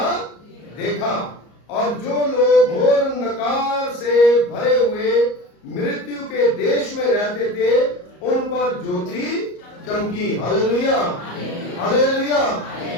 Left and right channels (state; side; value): late; right; 34 ms